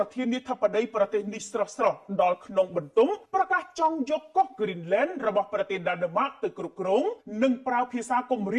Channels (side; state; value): both; identical; correlation 1.00